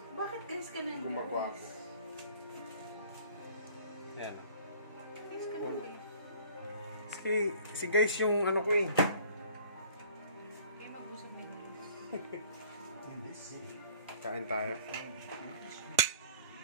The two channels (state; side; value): inverted; both; correlation -0.52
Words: Bakit guys ka na? gumagawa ako. Yan. Guys ka na guys. Si guys yung ano ko eh. Kayo mag-usap nyo guys. Kain tayo.